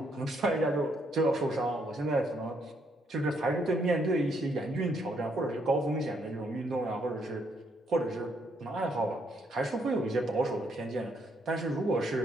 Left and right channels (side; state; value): both; normal; correlation 0.73